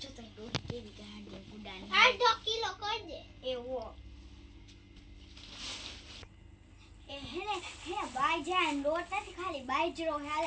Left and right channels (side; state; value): both; identical; correlation 1.00